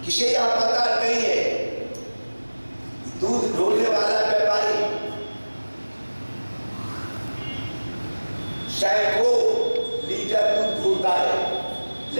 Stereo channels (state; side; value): inverted; both; correlation -1.00